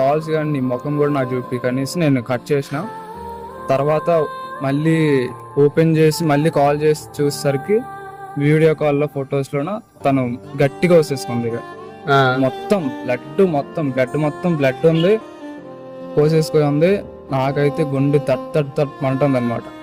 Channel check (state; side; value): identical; both; correlation 1.00